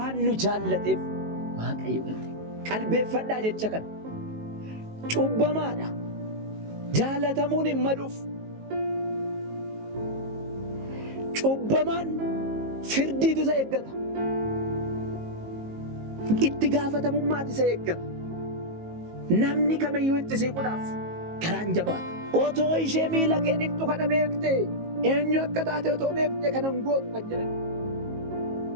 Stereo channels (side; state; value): left; late; 19 ms